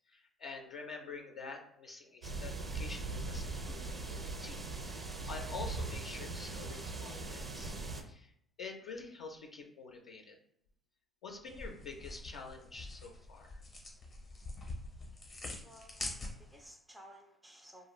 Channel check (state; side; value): normal; both; correlation 0.52